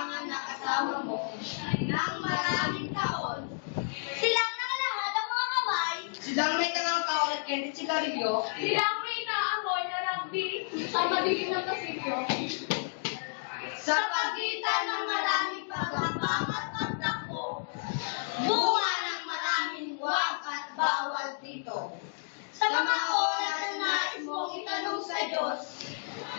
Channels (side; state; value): right; silent; digital silence